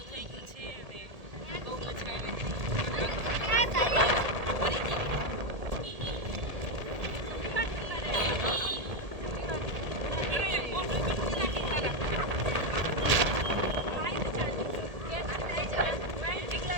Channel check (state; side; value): late; left; 1.8 ms